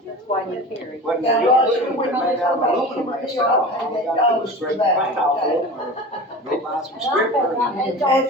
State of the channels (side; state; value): both; normal; correlation 0.33